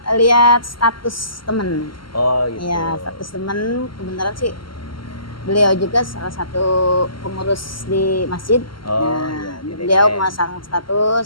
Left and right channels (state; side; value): late; right; 0.73 ms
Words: lihat status temen. Oh gitu. Ya, status temen kebenaran sih beliau juga salah satu pengurus di masjid. Oh, Nah, iya, di beliau DKM. memasang